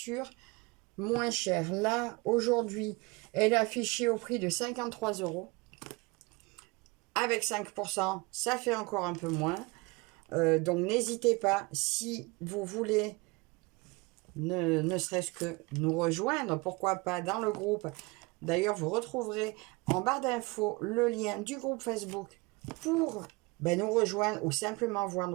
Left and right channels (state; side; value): quieter; left; 25.8 dB